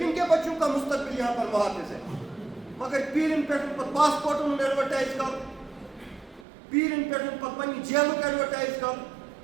کے بچوں کا مستقبل یہاں پر محافظ ہے مگر پیٖرن پٮ۪ٹھ پتہٕ پاسپورٹن ہُنٛد ایڈوَرٹایز کرُن پیٖرن پٮ۪ٹھ پتہٕ پننہِ جیلُک ایڈوَرٹایز کرُن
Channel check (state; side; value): drops out; left; at 6.5 s